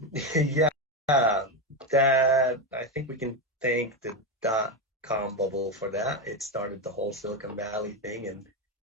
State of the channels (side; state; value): both; normal; correlation 0.11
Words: that I think we can thank the .com bubble for that. It started the whole Silicon Valley thing,